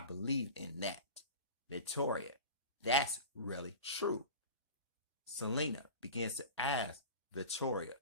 believe in that. Victoria, that's really true. Selena begins to ask Victoria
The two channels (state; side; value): inverted; both; correlation -0.33